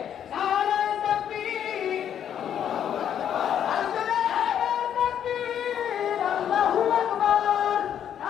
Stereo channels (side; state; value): right; quieter; 9.4 dB